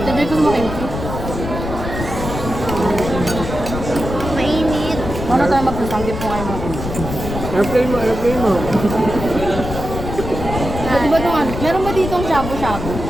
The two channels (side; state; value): left; noise; rumble, 6 dB below the sound